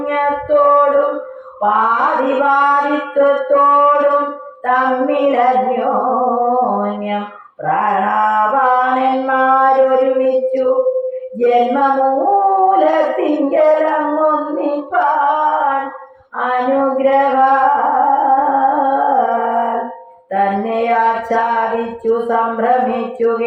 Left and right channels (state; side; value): identical; both; correlation 1.00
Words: പാതിപാതിത്വത്തോടും തമ്മിലന്യോന്യം പ്രാണാപാനന്മാരൊരുമിച്ചു ജന്മമൂലത്തിങ്കലങ്ങൊന്നിപ്പാൻ അനുഗ്രഹ തന്നെ ആച്ഛാദിച്ചു സംഭ്രമിച്ചു